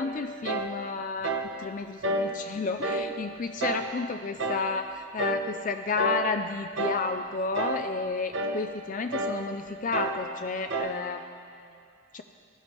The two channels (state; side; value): normal; both; correlation 0.00